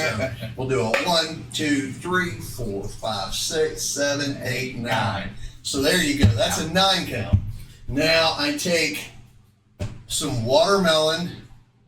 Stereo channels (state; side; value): identical; both; correlation 1.00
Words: we'll do a 1, 2, 3, 4, 5, 6, 7, 8, 9. So there you go. That's a 9 count. Now I take some watermelon